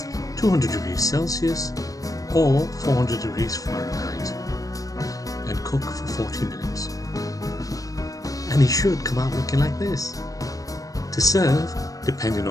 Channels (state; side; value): late; right; 0.17 ms